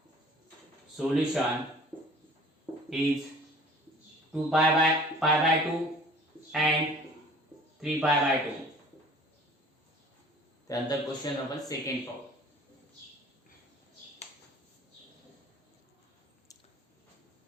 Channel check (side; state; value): both; normal; correlation 0.48